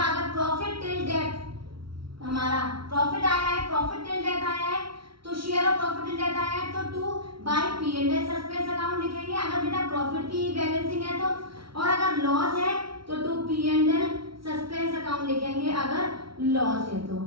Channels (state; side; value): late; left; 0.74 ms